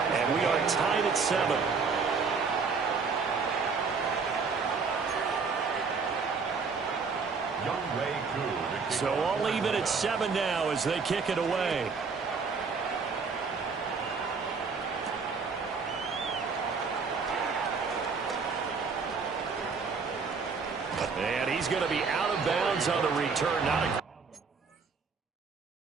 And we are tied at 7. So all even at 7 now as they kick it away. And he's going to be out of bounds on the return. Not a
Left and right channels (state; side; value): quieter; left; 5.0 dB